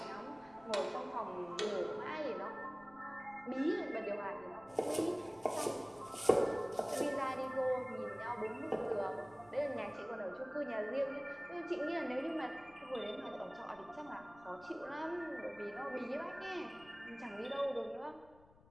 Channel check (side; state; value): left; noise; rumble, 25 dB below the sound